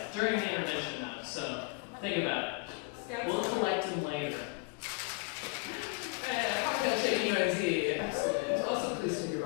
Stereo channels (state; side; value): quieter; right; 30.3 dB